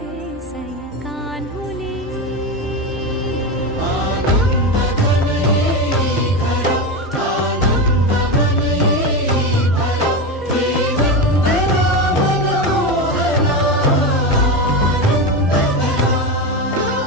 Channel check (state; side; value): normal; both; correlation 0.17